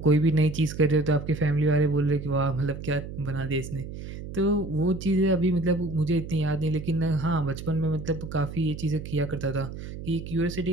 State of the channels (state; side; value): noise; right; hum, 10 dB below the sound